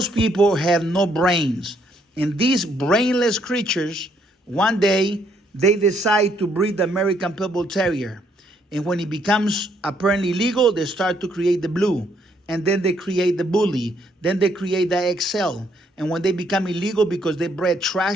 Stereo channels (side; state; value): both; normal; correlation 0.70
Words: people have no brains. And these brainless creatures, one day, they decide to breed the American Pitbull Terrier. And when it becomes apparently legal, they start to create the blue. And then they create the bully. Then they create the XL. And when they become illegal because they bred